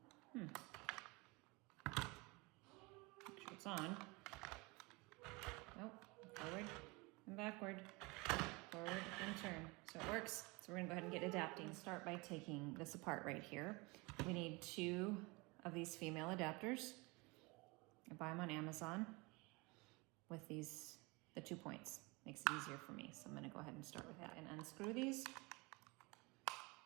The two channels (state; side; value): quieter; left; 26.1 dB